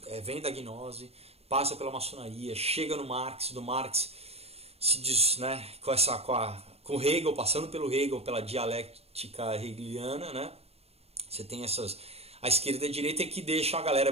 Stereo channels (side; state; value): left; late; 0.29 ms